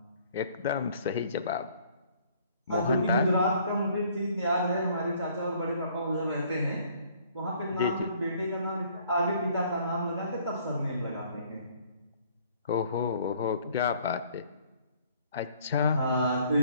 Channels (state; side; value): inverted; both; correlation -0.59